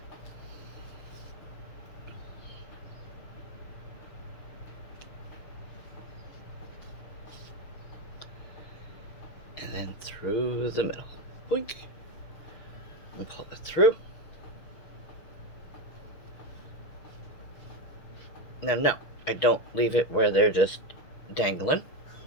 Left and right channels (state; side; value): late; right; 6.3 ms